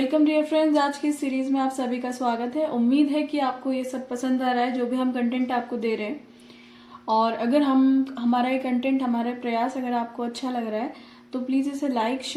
dear friends. आज की सीरीज में आप सभी का स्वागत है। उम्मीद है कि आपको ये सब पसंद आ रहा है जो भी हम कंटेंट आपको दे रहे हैं। और अगर हमारा ये कंटेंट, हमारा प्रयास अगर आपको अच्छा लग रहा है तो प्लीज़ इसे लाइक,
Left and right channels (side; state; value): both; identical; correlation 1.00